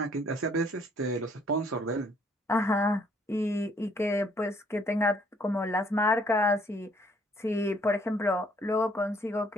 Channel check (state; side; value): normal; both; correlation 0.64